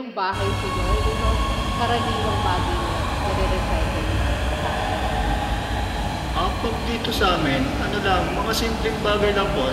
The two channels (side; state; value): both; identical; correlation 1.00